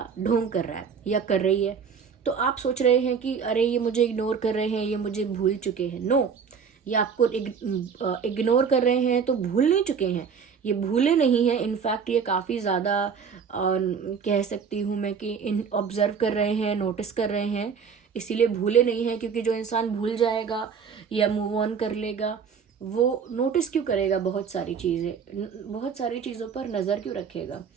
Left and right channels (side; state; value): left; quieter; 6.4 dB